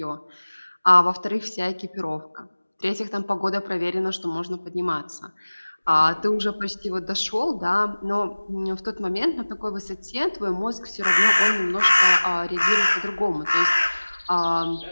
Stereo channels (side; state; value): both; inverted; correlation -1.00